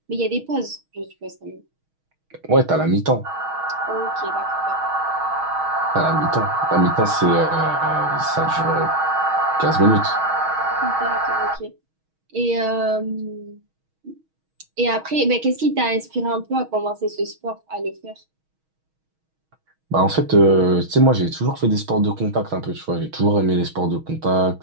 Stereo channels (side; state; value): left; late; 6.3 ms